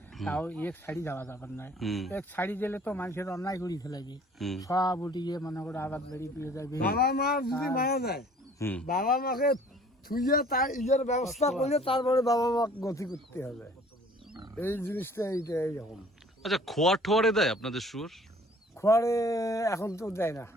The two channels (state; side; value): normal; both; correlation 0.53